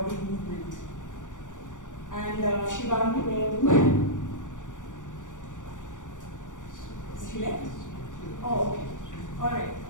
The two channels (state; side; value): late; right; 0.87 ms